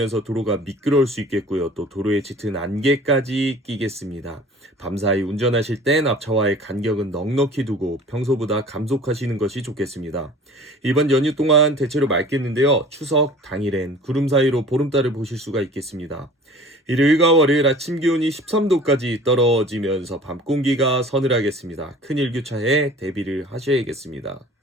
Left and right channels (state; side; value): normal; both; correlation 0.45